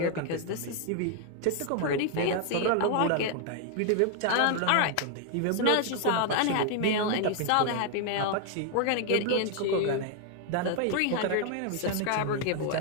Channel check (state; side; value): different; both; correlation 0.00